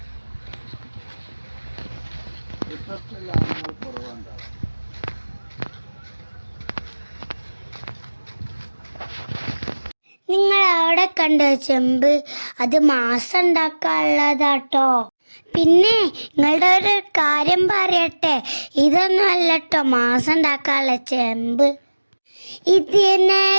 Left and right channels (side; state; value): both; inverted; correlation -1.00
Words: കുറവുണ്ടാവും. നിങ്ങൾ അവിടെ കണ്ടോ ചെമ്പ്? അത് മാസം ഉണ്ടാക്കാനുള്ളതാട്ടോ. പിന്നെ നിങ്ങളുടെ ഒരു കാര്യം പറയട്ടെ, ഇതൊന്നും അല്ലട്ടോ മാസം ഉണ്ടാക്കാനുള്ള ചെമ്പ്.